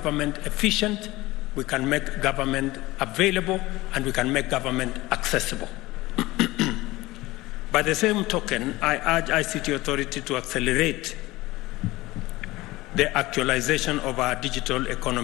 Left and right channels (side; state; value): right; quieter; 19.3 dB